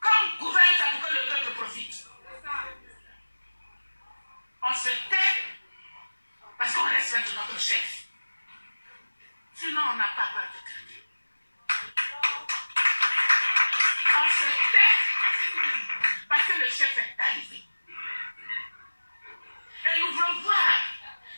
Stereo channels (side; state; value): both; inverted; correlation -1.00